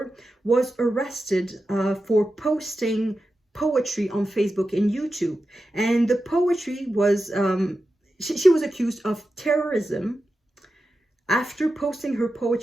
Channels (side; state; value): both; normal; correlation 0.91